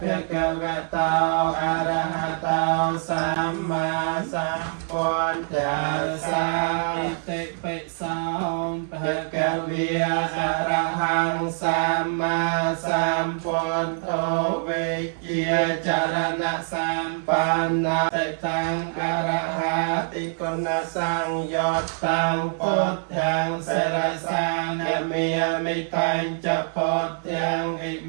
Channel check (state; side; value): silent; left; 62 dB below the other